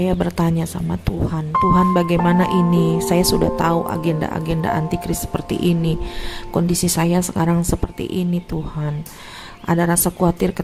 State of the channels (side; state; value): both; identical; correlation 1.00